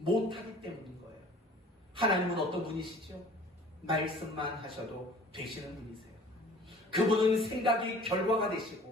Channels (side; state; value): both; normal; correlation 0.48